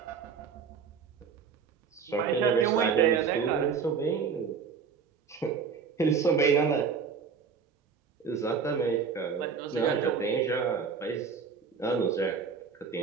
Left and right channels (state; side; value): quieter; left; 6.0 dB